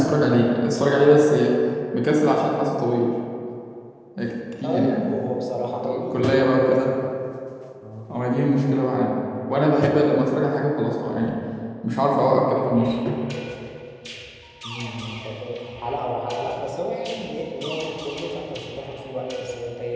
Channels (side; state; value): both; identical; correlation 1.00